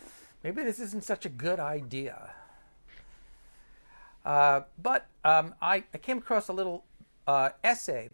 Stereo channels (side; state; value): both; inverted; correlation -1.00